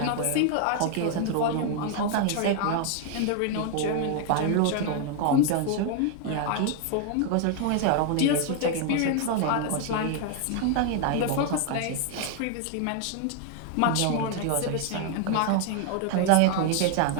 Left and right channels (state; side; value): different; both; correlation 0.00